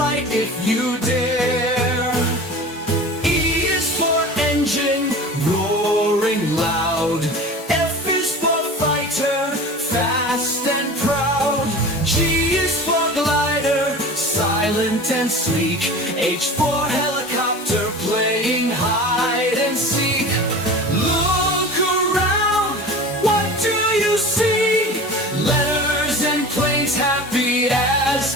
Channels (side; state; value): both; normal; correlation 0.36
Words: if you dare. E is for engine, roaring loud. F is for fighter, fast and proud. G is for glider, silent and sleek. H for helicopter, playing hide and seek. Look around, what do you see? Letters and planes, happy as